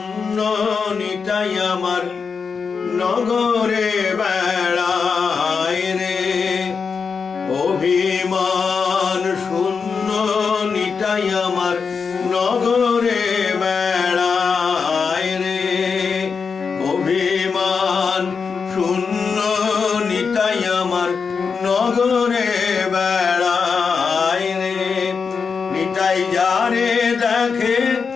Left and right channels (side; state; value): right; quieter; 5.5 dB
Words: নিতাই আমার নগরে বেড়ায় রে। অভিমান শূন্য নিতাই আমার নগরে বেড়ায় রে। অভিমান শূন্য নিতাই আমার নগরে বেড়ায় রে। নিতাই যারে দেখে